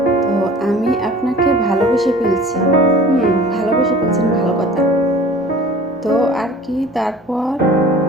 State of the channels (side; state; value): both; normal; correlation 0.45